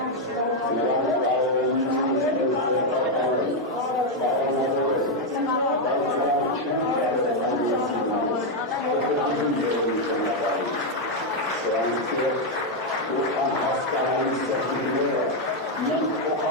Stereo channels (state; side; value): normal; both; correlation 0.02